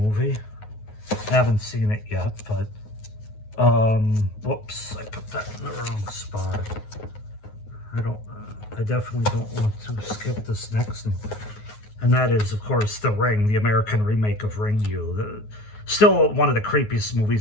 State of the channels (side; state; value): right; late; 9.4 ms